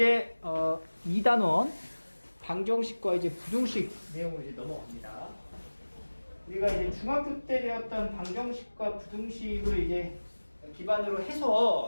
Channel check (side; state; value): both; inverted; correlation -1.00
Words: 2단원 방정식과 이제 부등식 내용으로 이제 넘어갑니다. 우리가 이제 중학교 때 배웠던 방정식과 부등식을 이제 기반으로